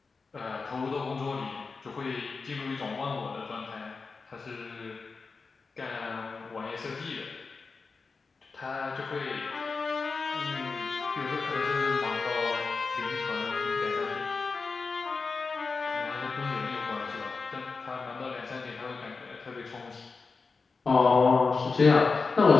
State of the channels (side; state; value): right; quieter; 4.5 dB